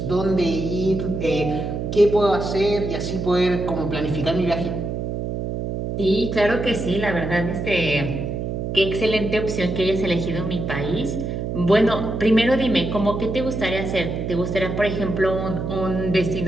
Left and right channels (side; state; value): right; noise; hum, 3 dB below the sound